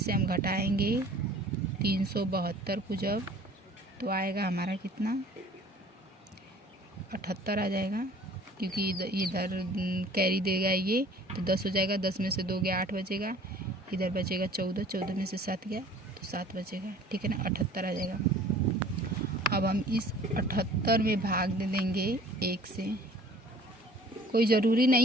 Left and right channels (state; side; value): normal; both; correlation 0.50